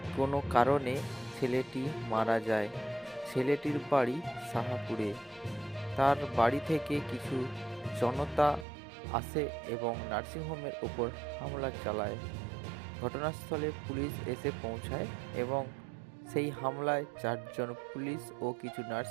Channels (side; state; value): left; drops out; at 8.7 s